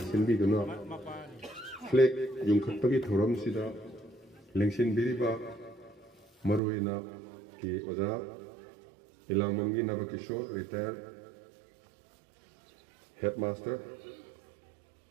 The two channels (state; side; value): drops out; left; at 6.6 s